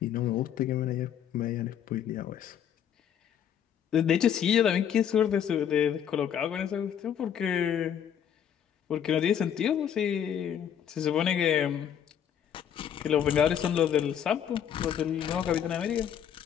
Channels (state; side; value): quieter; right; 9.0 dB